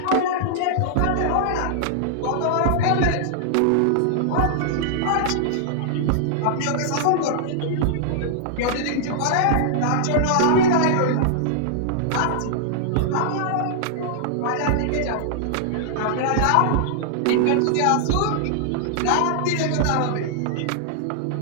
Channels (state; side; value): different; both; correlation -0.01